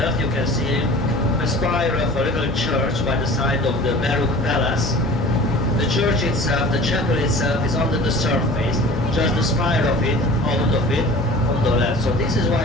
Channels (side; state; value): both; normal; correlation 0.41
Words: you can see a spire of a little church by the side of the Baroque palace. The church itself, the chapel itself, is under the surface, just the spire of it, out of it, on the left. So this is